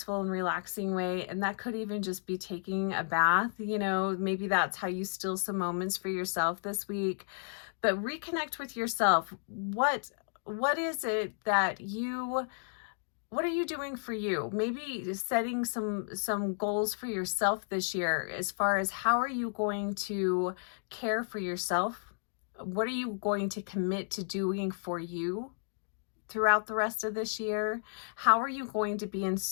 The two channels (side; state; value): right; silent; digital silence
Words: and relaxing way, and that could even just be taking a bath, you know, maybe that's how you steal some moments for yourself this week. But reconnect with yourself. What is it that what are you doing for you? Maybe setting some goals for yourself this year, as far as how are you going to care for yourself? What are you going to commit to doing for you throughout the rest of this year? How are you going to be in